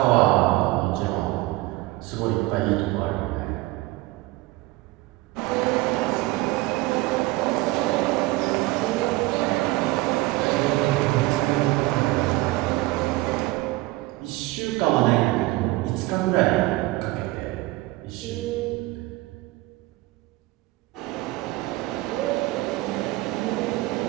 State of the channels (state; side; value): quieter; left; 19.6 dB